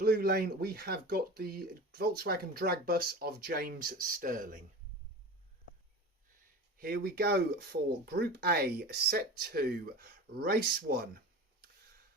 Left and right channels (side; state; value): both; normal; correlation 0.32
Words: lane we have got the Volkswagen drag bus of James Stirling. Here we go for Group A, Set 2, Race 1.